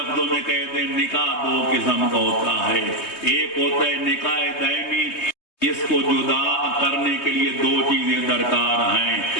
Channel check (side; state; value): right; late; 3.2 ms